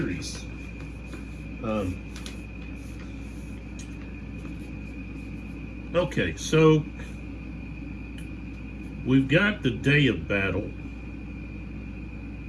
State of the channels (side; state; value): both; identical; correlation 1.00